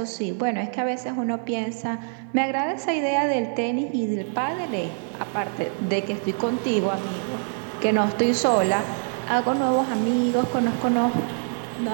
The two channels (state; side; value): silent; left; 58 dB below the other